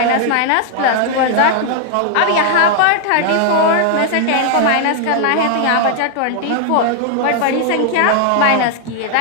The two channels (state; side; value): different; both; correlation 0.00